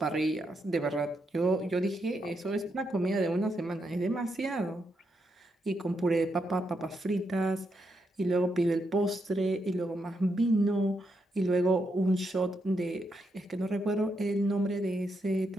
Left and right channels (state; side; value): normal; both; correlation 0.81